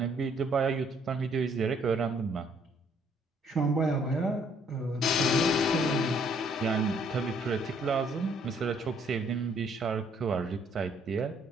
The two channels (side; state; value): both; normal; correlation 0.65